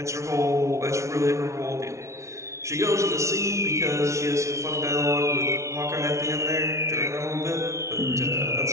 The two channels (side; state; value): left; late; 0.14 ms